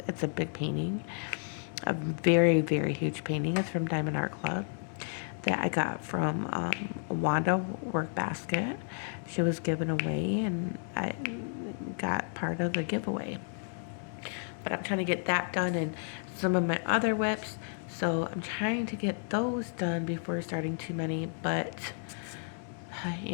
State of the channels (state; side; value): silent; right; 56 dB below the other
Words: It's a big painting, a very, very huge painting. It's from Diamond Art Club that I got from Wanda Work Basket. She was given away, and I got part of the giveaway. But I'm trying to get that done, and some of my other whips. So I'm trying to get those done before starting too many. But